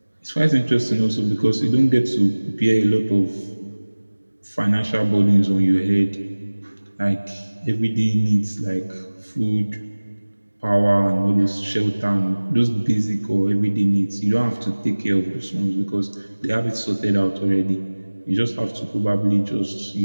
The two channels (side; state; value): both; inverted; correlation -1.00